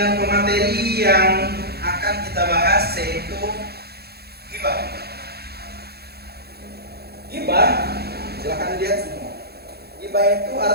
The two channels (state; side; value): late; left; 0.46 ms